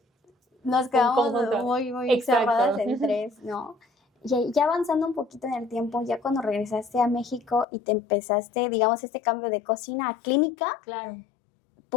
nos quedamos muy cerradas en 3, ¿no? Y ya avanzando un poquito en el tiempo, ya cuando regresaste a México y te empezaste, digamos, este cambio de cocina a clínica, claro,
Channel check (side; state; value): right; drops out; at 7.7 s